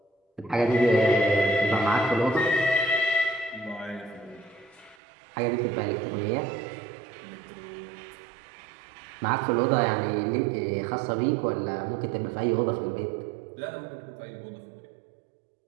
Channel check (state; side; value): drops out; left; at 5.0 s